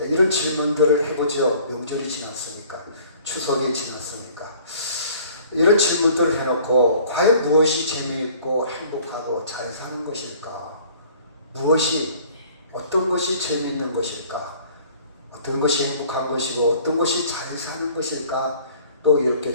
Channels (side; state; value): both; inverted; correlation -0.53